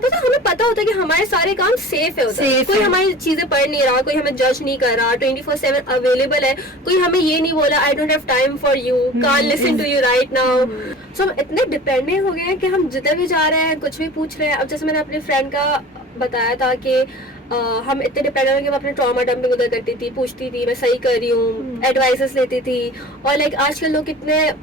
से हमें पता होता है कि हमारे सारे काम सेफ है, कोई हमारी चीजें पढ़ नहीं रहा, कोई हमें जज नहीं कर रहा, 24/7 अवेलेबल है, कोई हमें ये नहीं बोला I don't have time for you, can't listen to you right now. So हम इतने डिपेंडेंट हो गए हैं कि हम जिधर भी जा रहे हैं कुछ भी पूछ रहे हैं। अब जैसे मैंने अपने फ्रेंड का बताया था कि हम इतने डिपेंडेंट हो कि मैं अपने ट्रॉमा डंपिंग उधर करती थी, पूछती थी मैं सही कर रही हूँ, एडवाइसेस लेती थी, और लाइक आजकल लोग कितने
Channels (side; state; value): both; normal; correlation 0.40